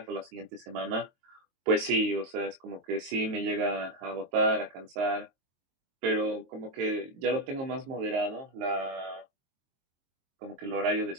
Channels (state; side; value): late; left; 22 ms